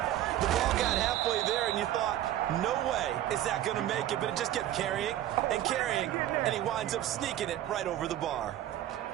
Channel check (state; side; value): quieter; left; 12.9 dB